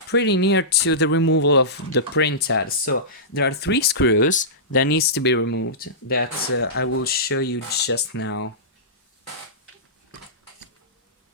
pretty near to the removal of the printhead. So there are 3 screws that needs to be removed that I will show you just now.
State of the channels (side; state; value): both; normal; correlation -0.18